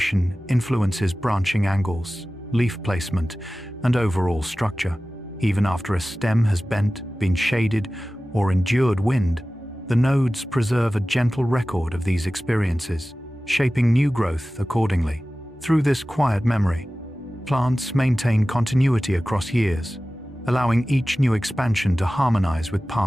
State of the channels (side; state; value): both; normal; correlation 0.96